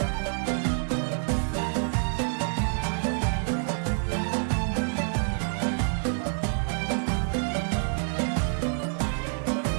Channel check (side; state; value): left; silent; 56 dB below the other